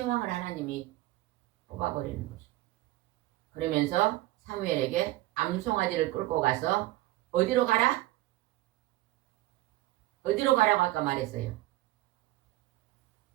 왕을 하나님이 뽑아버리는 것이죠. 그러면서 사무엘에게 암송아지를 끌고 가서 어디로 가라? 어디로 가라고 아까 말했어요.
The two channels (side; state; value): left; quieter; 17.2 dB